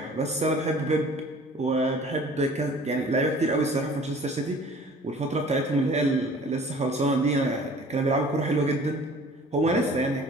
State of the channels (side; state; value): both; normal; correlation 0.49